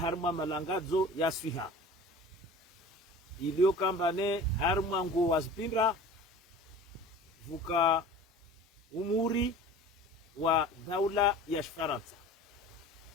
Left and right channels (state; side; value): normal; both; correlation 0.41